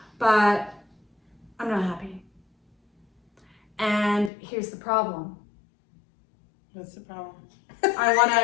but I'm not happy. And here's the problem. What's the problem? I want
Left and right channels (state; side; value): drops out; right; at 4.3 s